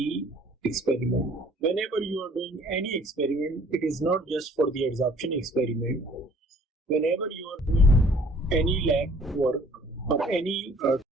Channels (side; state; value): both; normal; correlation 0.55